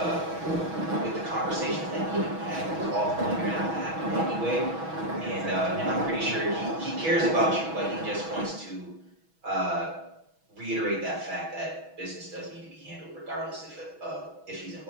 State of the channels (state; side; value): late; left; 6.2 ms